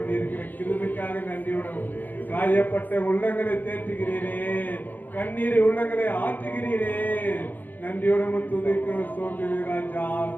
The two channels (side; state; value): right; late; 0.086 ms